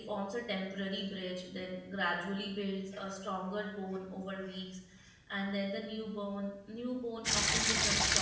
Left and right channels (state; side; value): identical; both; correlation 1.00